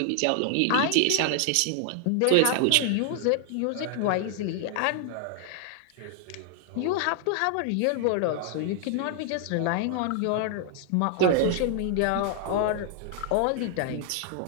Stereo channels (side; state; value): both; different; correlation 0.00